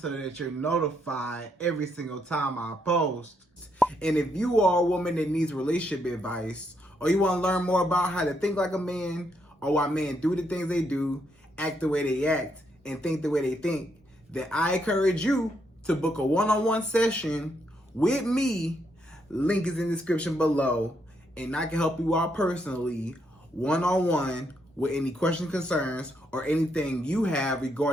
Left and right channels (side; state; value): both; normal; correlation 0.76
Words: that you're notified every single time I post. And if you are a woman that needs relationship advice, or you want to learn more about how to think like a man, or why men do the things they do, act the way they act, and think the way they think, then I encourage you to book a one-on-one session with me. Link is in the description below, and I can help you out personally, one-on-one, with any questions, concerns, or anything you have